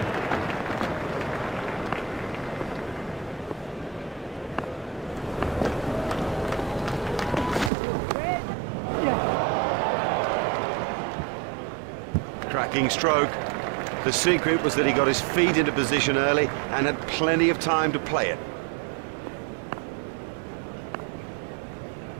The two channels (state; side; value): drops out; left; at 7.7 s